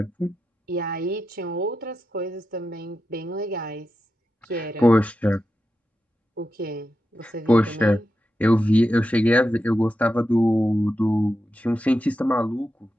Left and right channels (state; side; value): normal; both; correlation 0.89